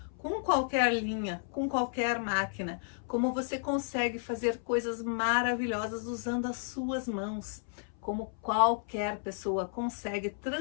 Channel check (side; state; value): right; silent; 56 dB below the other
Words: com qualquer linha, com qualquer máquina, como você consegue fazer coisas maravilhosas usando as suas mãos, como qualquer pessoa consegue